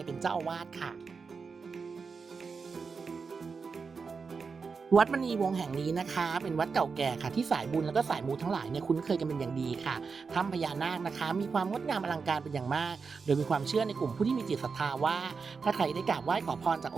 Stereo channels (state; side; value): quieter; left; 5.1 dB